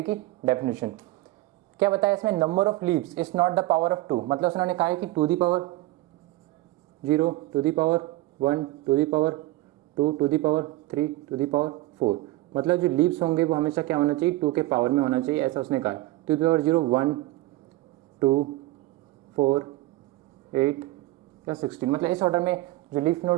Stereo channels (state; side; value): quieter; left; 18.5 dB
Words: की डेफिनेशन। क्या बताया इसमें, number of leaves is not the power of 2, मतलब उन्होंने कहा है कि 2 दी power 0 2 the power 1 2 the power 2 2 the power 3 2 the power 4। मतलब जो लीव्स होंगे वो हमेशा क्या होना चाहिए, 2 के पावर में होना चाहिए, ऐसा उसने कहा है। 2 दी पावर 0 1 2 4 8 या 16, मतलब इस ऑर्डर में जो लीफ